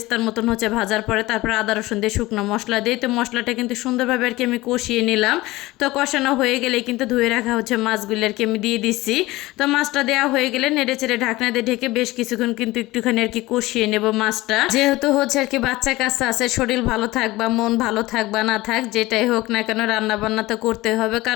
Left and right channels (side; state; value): right; quieter; 19.2 dB